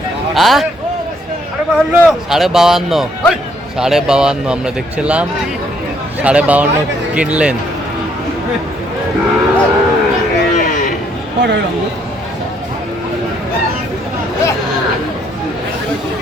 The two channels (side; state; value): both; normal; correlation 0.68